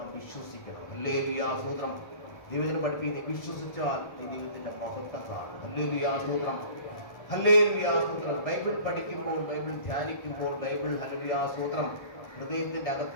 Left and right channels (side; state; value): right; late; 1.3 ms